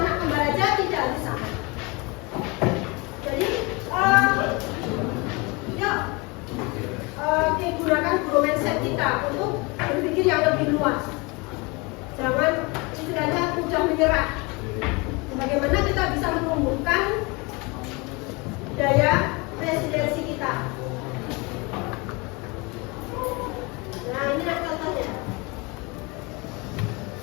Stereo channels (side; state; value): right; quieter; 27.4 dB